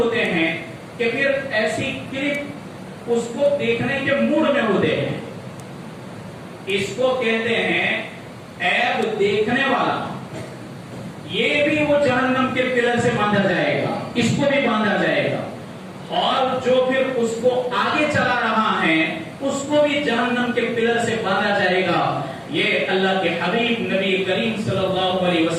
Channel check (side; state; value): both; identical; correlation 1.00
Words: ہیں کہ پھر ایسی کلپ اس کو دیکھنے کے موڈ میں ہوتے ہیں۔ اس کو کہتے ہیں عیب دیکھنے والا۔ یہ بھی وہ جہنم کے پلر سے باندھا جائے گا، اس کو بھی باندھا جائے گا۔ اور جو پھر اس کو آگے چلا رہا ہے اس کو بھی جہنم کے پلر سے باندھا جائے گا. یہ اللہ کے حبیب نبی کریم صلی اللہ علیہ